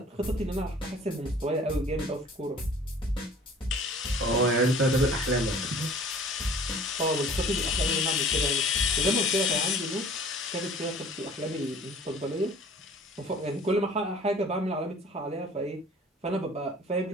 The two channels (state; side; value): normal; both; correlation 0.49